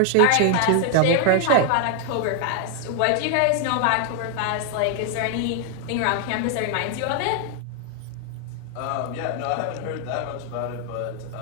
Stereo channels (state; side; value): different; both; correlation 0.00